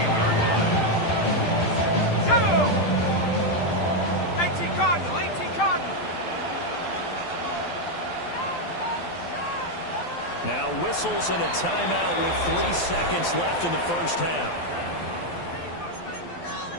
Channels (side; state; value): right; late; 12 ms